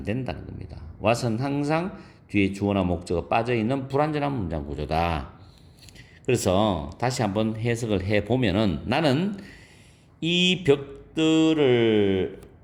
된다는 겁니다. was는 항상 뒤에 주어나 목적어 빠져있는 불완전한 문장 구조다. 그래서 다시 한번 해석을 해보면은 나는 이 벽들을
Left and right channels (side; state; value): both; identical; correlation 1.00